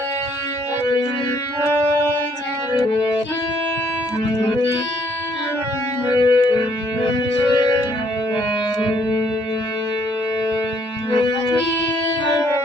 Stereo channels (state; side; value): normal; both; correlation 0.67